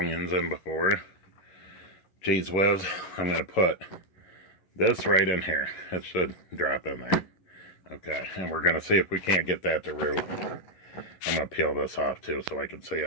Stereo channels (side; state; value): right; late; 11 ms